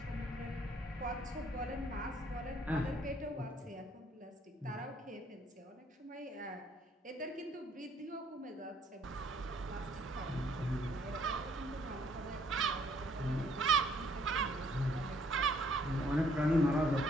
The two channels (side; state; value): both; normal; correlation 0.64